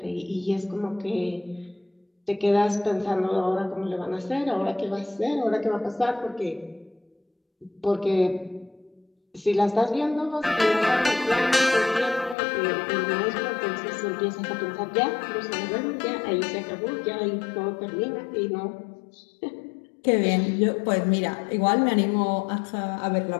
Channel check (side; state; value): right; drops out; at 12.4 s